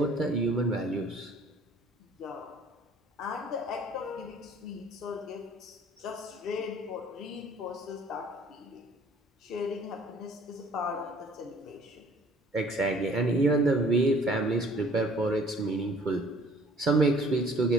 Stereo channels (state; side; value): normal; both; correlation 0.54